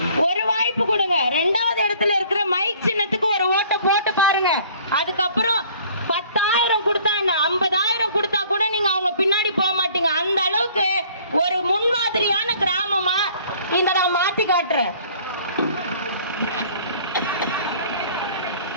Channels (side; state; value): both; inverted; correlation -0.54